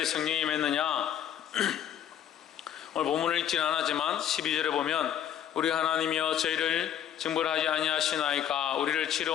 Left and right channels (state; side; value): quieter; right; 10.0 dB